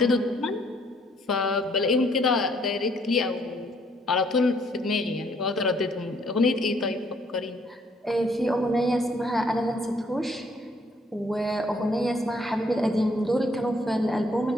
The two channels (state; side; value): normal; both; correlation 0.66